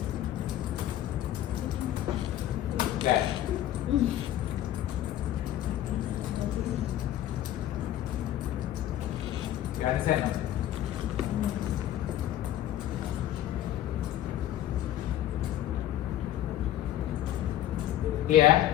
That. You understand? Here,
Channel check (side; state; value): right; quieter; 12.5 dB